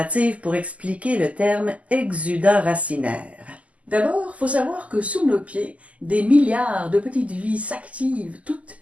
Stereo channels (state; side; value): late; left; 0.069 ms